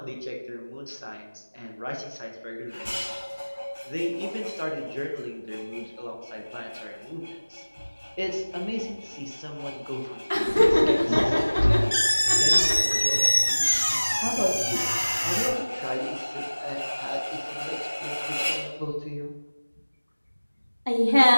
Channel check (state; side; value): inverted; both; correlation -1.00